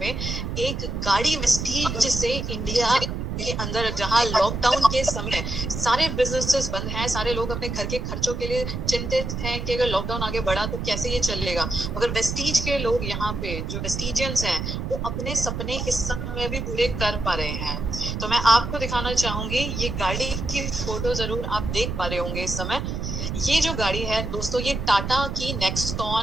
एक गाड़ी वेस्टीज से इंडिया के अंदर, जहां लॉकडाउन के समय सारे बिजनेसेस बंद हैं, सारे लोग अपने घर के खर्चों के लिए चिंतित हैं कि अगर लॉकडाउन आगे बढ़ा तो कैसे ये चलेगा, मगर वेस्टीज के लोग यहाँ पे जो वेस्टीजियंस हैं वो अपने सपने इस समय भी पूरे कर पा रहे हैं। तो मैं आपको दिखाना चाहूंगी, ये गाड़ी की फोटो जरूर आप देख पा रहे होंगे इस समय। ये जो गाड़ी है दोस्तों, ये टाटा की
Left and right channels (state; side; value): noise; right; rumble, 4 dB below the sound